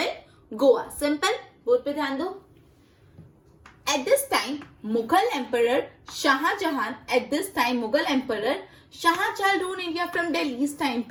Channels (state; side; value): identical; both; correlation 1.00